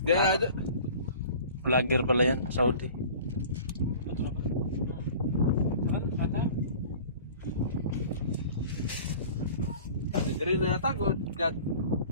Dia Vlogger pala yan, Saudi. dari na yata ko dyan.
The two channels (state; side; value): inverted; both; correlation -0.43